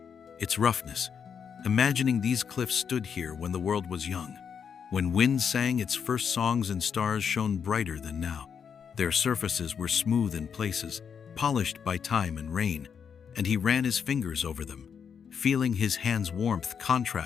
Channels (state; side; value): quieter; right; 7.0 dB